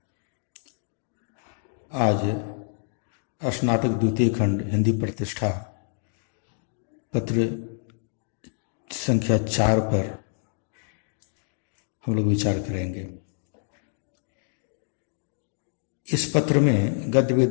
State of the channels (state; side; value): silent; right; digital silence